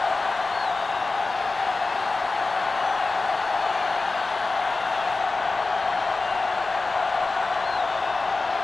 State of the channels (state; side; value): quieter; right; 3.7 dB